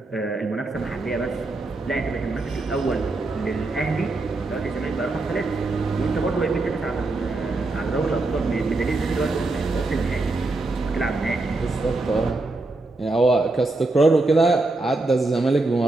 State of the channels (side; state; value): left; quieter; 3.2 dB